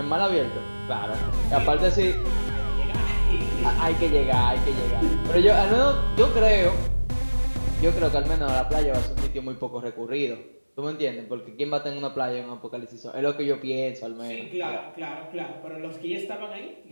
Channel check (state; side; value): inverted; both; correlation -1.00